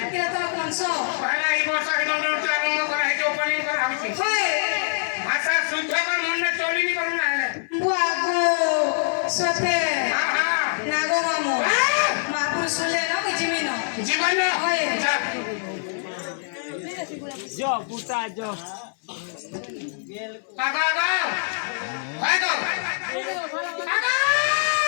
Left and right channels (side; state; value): right; silent; 62 dB below the other